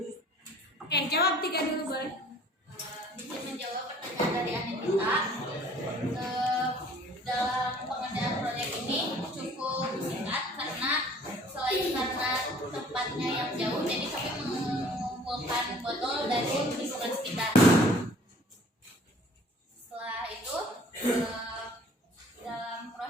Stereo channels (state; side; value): normal; both; correlation 0.53